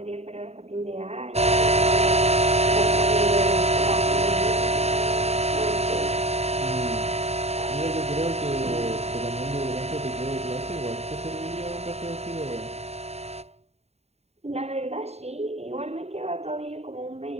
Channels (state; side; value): late; left; 0.31 ms